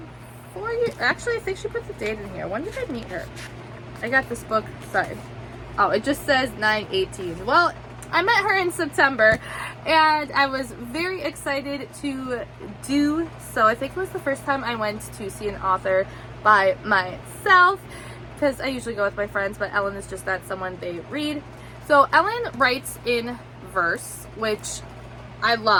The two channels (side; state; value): both; identical; correlation 1.00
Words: years, actually I think she put the date in here. When did I meet her? I got this book, sorry. Oh, it just says 9/18. Well, I met her in September, and I was very excited to do so. I think it was the first time I went to see an author by myself, because I usually go with my friends, but Ellen is just not someone they read. So Ellen writes in verse, which I